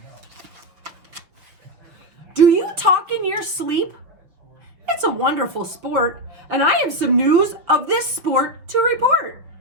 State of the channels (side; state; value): left; late; 6.3 ms